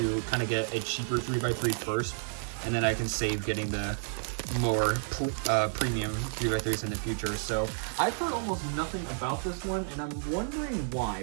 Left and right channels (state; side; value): silent; left; digital silence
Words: kind of get a cheaper 3x3 first, and then I can save getting the more premium 3x3s in the future. So I've heard almost nothing about this one, and I'm wondering why,